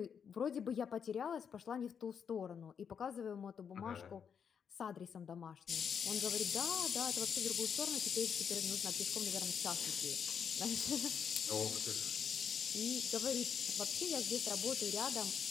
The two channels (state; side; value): quieter; right; 7.2 dB